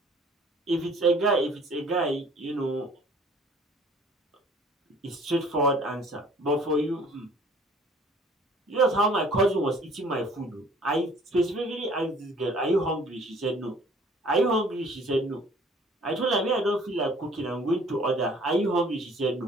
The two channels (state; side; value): normal; both; correlation 0.54